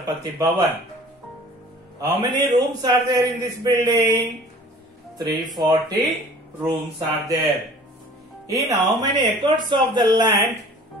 Bhavan. How many rooms are there in this building? 340 rooms are there. In how many acres of the land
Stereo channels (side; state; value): both; normal; correlation 0.47